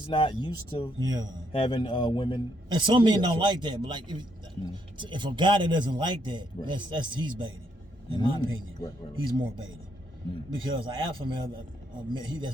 not used to Yeah. having women. And some men Yeah, don't so- like that, but like if a guy that doesn't like that, Right. that's he's baiting. In my opinion, Right. he's more baiting Mm. because an alpha male,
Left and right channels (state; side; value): normal; both; correlation 0.74